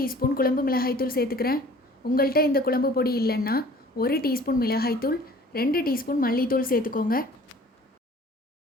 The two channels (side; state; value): both; normal; correlation 0.49